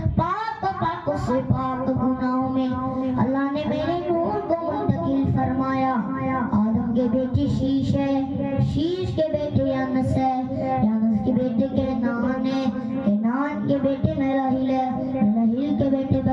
पाक से पाक गुनाहों में अल्लाह ने मेरे नूर को मुंतकिल फरमाया। आदम के बेटे शीश है, शीश के बेटे अनस है, अनस के बेटे केनान है, केनान के बेटे मेराहिल है, मेराहिल के बेटे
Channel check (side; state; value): both; identical; correlation 1.00